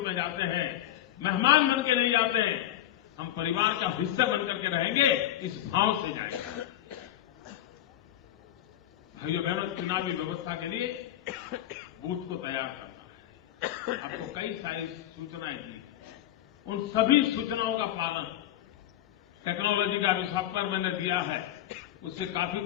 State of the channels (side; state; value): right; quieter; 12.8 dB